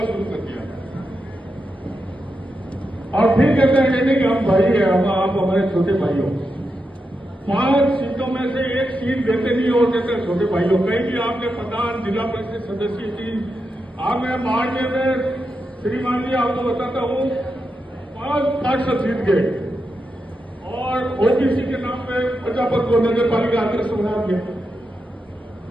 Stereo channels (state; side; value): normal; both; correlation 0.87